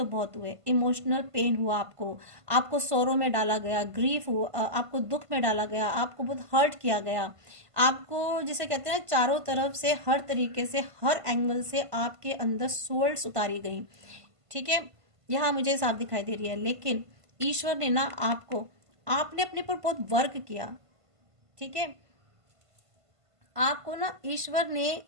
बहुत हुए, इमोशनल पेन हुआ आपको, आपको सोरो में डाला गया, ग्रीफ हुआ, आपको दुख में डाला गया, आपको बहुत हर्ट किया गया, आपको जिसे कहते हैं चारों तरफ से, हर तरीके से, हर एंगल से आपके अंदर सोल्स उतारी गई। ठीक है, यहाँ मुझे साफ दिखाई दे रही है। लेकिन ईश्वर ने ना आपने अपने पर बहुत वर्क किया। ठीक है, आपको ना ईश्वर ने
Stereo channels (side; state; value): left; late; 1.5 ms